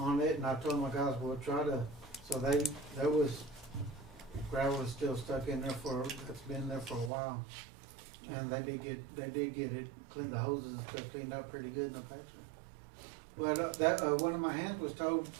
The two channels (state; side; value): drops out; left; at 7.1 s